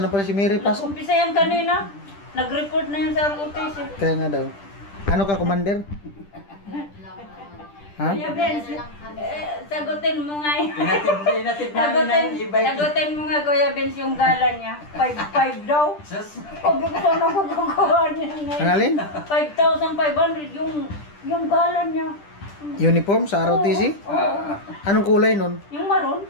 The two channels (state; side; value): late; right; 10 ms